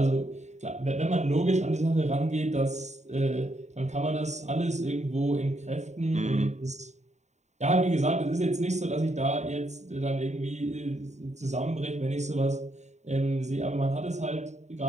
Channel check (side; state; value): left; late; 0.34 ms